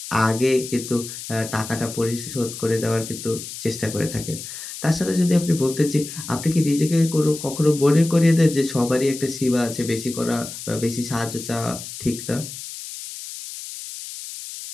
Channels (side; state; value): left; noise; hiss, 10 dB below the sound